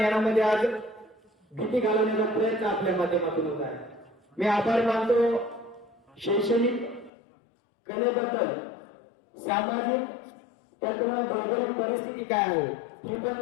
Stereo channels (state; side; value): drops out; right; at 7.1 s